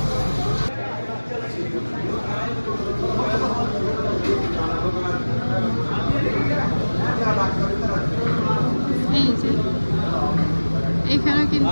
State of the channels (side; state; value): both; inverted; correlation -1.00